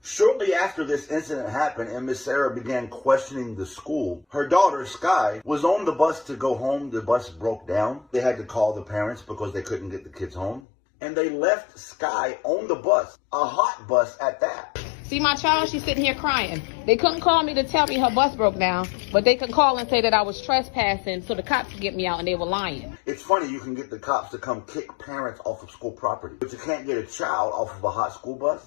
Shortly after this incident happened and Miss Sarah began questioning the school, her daughter, Sky, was on the bus to go home. The bus broke down. They had to call the parents because they couldn't get the kids home. And they left Sky on the bus, a hot bus at that. See my child? She's sitting here crying. They couldn't call me to tell me her bus broke down, but they could call and say that I was trespassing so the cops could get me out, and they were lying. It's funny, you can get the cops to come kick parents off of school property, but you can't get a child off of a hot school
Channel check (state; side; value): drops out; right; at 10.6 s